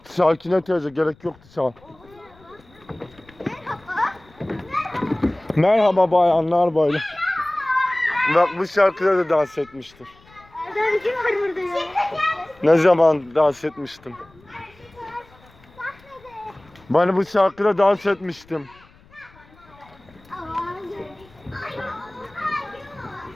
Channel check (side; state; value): left; noise; rumble, 27 dB below the sound